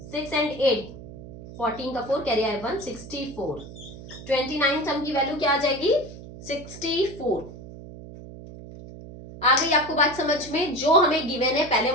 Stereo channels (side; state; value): right; noise; hum, 15 dB below the sound